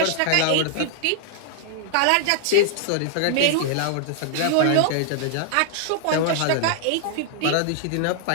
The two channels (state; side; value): different; both; correlation 0.00